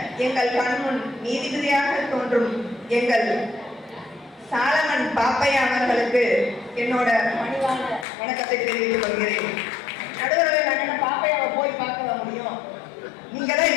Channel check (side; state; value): right; drops out; at 8.1 s